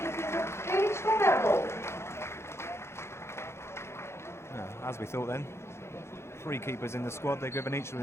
As we thought then. 3 keepers in the squad. They're given each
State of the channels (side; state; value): right; late; 0.13 ms